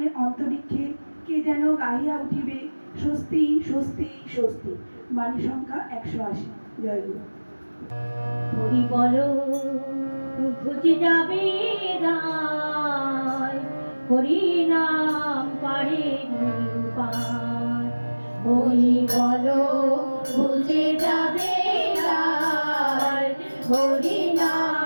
অন্তরিক্ষে কে যেন গাহিয়া উঠিবে, স্বস্তি স্বস্তি স্বস্তি। বাণী সংখ্যা 180। জয় গুরু। হরি বলো ঘুচে যাবে দায়, হরি নাম পারে পার। হরি বলো ঘুচে যাবে দায়, হরি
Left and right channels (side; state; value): both; inverted; correlation -1.00